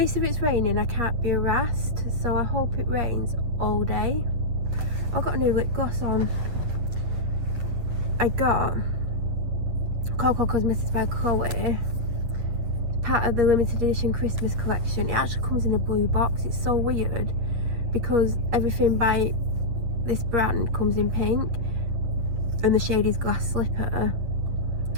if it's raining I can't be harassed, so I hope it rains all day. I've got a new lip gloss on. I got Coco Cosmetics by Chloe, part of the limited edition Christmas collection. It actually comes in a blue box. It's so weird because everything by this brand comes in pink, and the shade is Glass Slipper,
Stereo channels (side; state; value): left; late; 8.4 ms